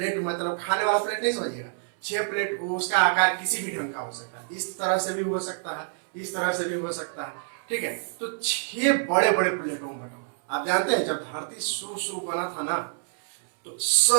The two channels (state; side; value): silent; left; 60 dB below the other